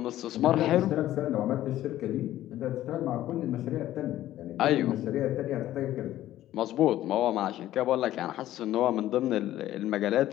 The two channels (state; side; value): quieter; right; 13.7 dB